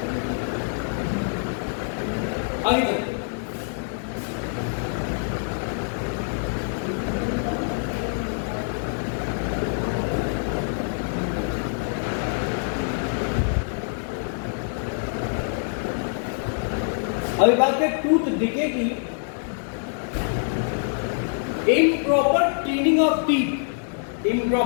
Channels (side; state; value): right; silent; digital silence